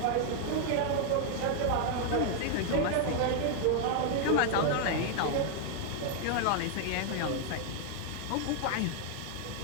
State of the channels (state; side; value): different; both; correlation 0.00